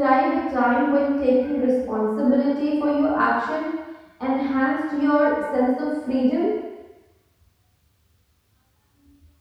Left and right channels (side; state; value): both; identical; correlation 1.00